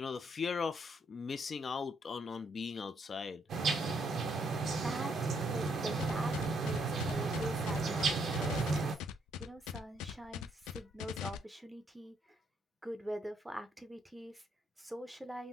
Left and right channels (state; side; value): normal; both; correlation 0.72